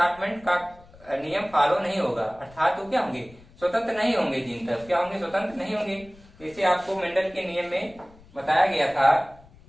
का नियम फॉलो नहीं होगा। अर्थात वो क्या होंगे, स्वतंत्र नहीं होंगे जीन, तब क्या होंगे, स्वतंत्र नहीं होंगे। जैसे आपको मेंडल के नियम में बताया गया था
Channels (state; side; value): noise; left; rumble, 24 dB below the sound